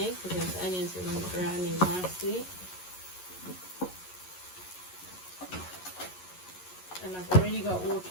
because those onions are browning nicely. And I've already got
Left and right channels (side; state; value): right; late; 11 ms